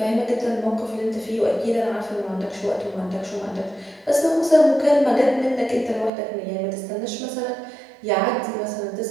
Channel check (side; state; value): left; drops out; at 6.1 s